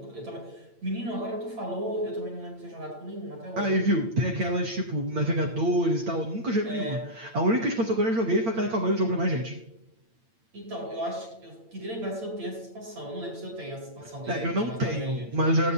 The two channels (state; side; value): late; left; 8.8 ms